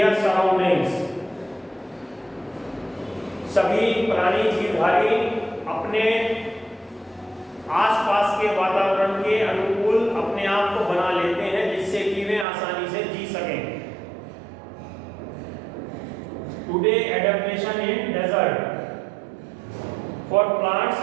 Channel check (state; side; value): drops out; left; at 12.5 s